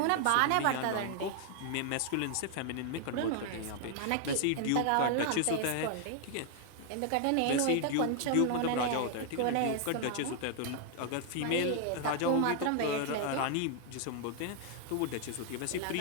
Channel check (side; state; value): both; different; correlation 0.00